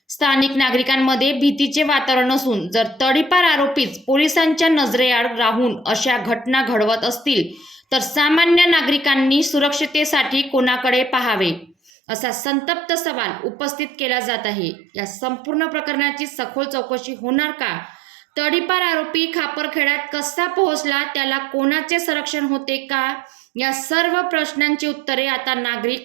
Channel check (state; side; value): drops out; left; at 11.9 s